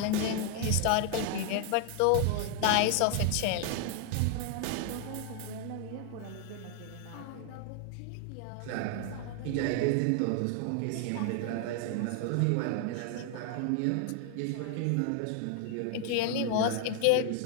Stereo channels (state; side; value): different; both; correlation 0.00